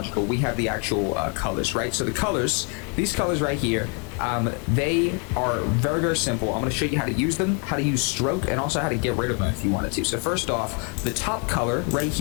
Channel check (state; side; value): quieter; right; 34.8 dB